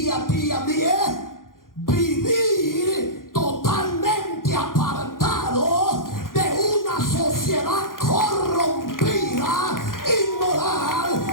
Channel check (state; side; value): late; right; 0.90 ms